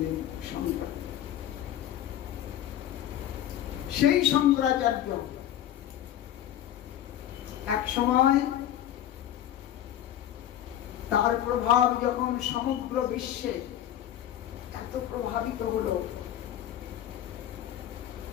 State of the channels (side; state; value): right; quieter; 11.6 dB